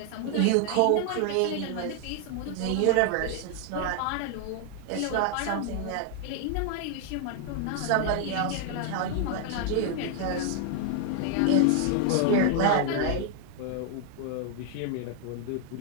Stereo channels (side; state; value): both; different; correlation 0.00